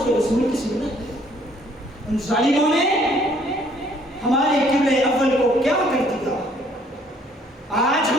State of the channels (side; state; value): both; normal; correlation 0.62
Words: کے رسول کی سنت ہے۔ ان ظالموں نے ہمارے قبلہ اول کو کیا کر دیا؟ آج